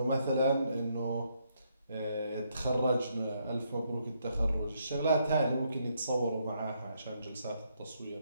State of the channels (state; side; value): inverted; both; correlation -0.74